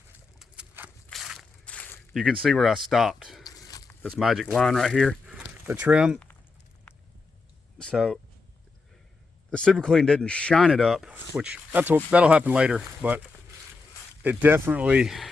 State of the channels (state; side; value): quieter; right; 4.0 dB